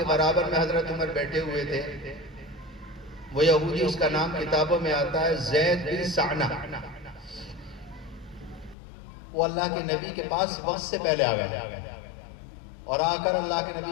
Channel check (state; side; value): drops out; right; at 8.8 s